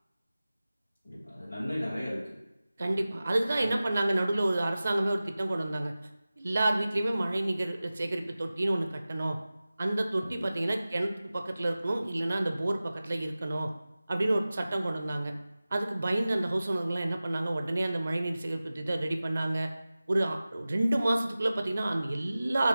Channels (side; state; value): both; inverted; correlation -0.97